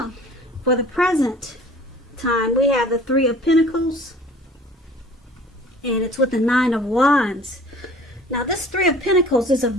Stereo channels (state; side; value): normal; both; correlation 0.48